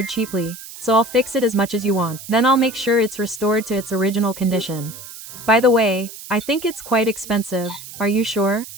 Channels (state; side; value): noise; right; hiss, 14 dB below the sound